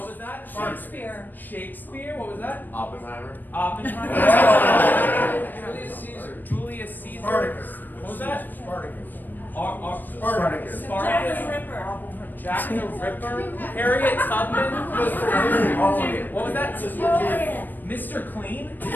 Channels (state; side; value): late; right; 0.090 ms